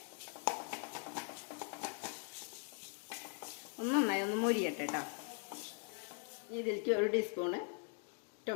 നന്നായി ഒന്ന് മൊരിയട്ടെ കേട്ടോ. ഇതിലേക്ക് ഒരു ടീസ്പൂണ്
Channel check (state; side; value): quieter; right; 39.5 dB